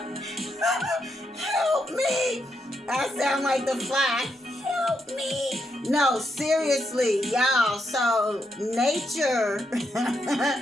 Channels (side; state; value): both; normal; correlation 0.81